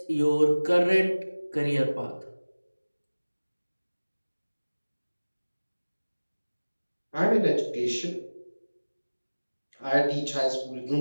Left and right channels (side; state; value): both; inverted; correlation -1.00